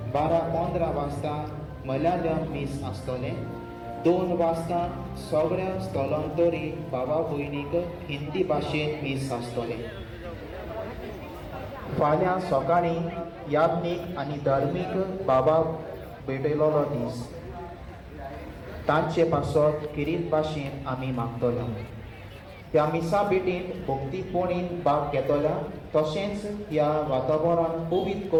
12:15 वाजता मल्याळम मीस आसतलें. 2 वाजता सगळ्या स्थलांतरी भावा भयणीक हिंदी भाशेन मीस आसतलें. फाल्यां सकाळीं याज्ञीक आनी धार्मीक भावाक भेटयलो दीस. तांचे पासत किरीत भाशेन आमी मागतले. ह्या मिसा भेटींत भक्तीपोणीन भाग घेतल्या तशेंच ह्या वातावरण पवित्र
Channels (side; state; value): both; identical; correlation 1.00